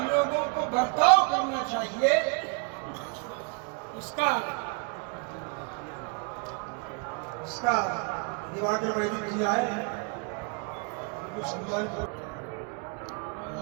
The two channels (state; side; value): quieter; left; 34.3 dB